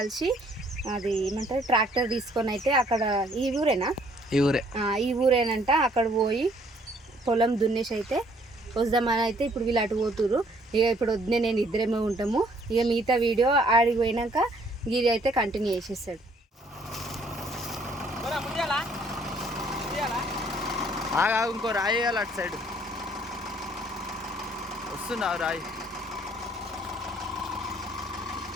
అది ఏమంటారు ట్రాక్టర్ తీసుకొని అయితే అక్కడ ఈ ఊరేనంట అక్కడ పోయి పొలం దున్నేసి అయితే వద్దామని అయితే ఇప్పుడు వీళ్ళు అటు పోతురు. ఇక ఇప్పుడు వద్దే నేను ఇద్దరేమో ఉంటాము. ఇక మిగతా వీడియో ఆడికి పోయినాక గిరి అయితే కంటిన్యూ చేసేస్తాడు. ఇంకో రాయి వేయాలి అటు సైడ్. వస్తున్నావు రాయి.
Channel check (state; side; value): normal; both; correlation 0.63